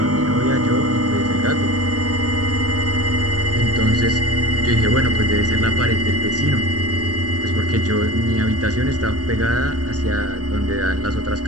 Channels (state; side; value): late; left; 0.68 ms